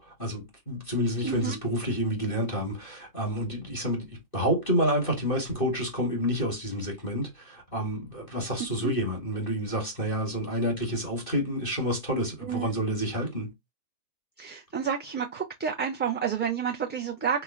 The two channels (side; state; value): right; late; 2.6 ms